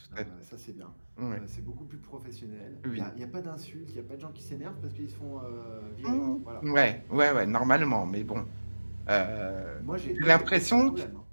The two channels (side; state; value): both; inverted; correlation -1.00